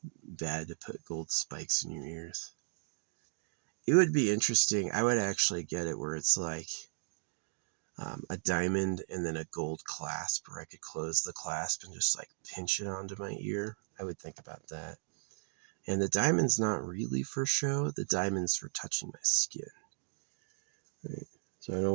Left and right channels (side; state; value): left; silent; digital silence